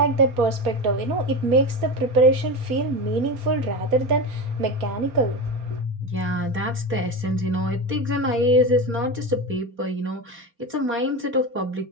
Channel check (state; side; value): late; left; 4.3 ms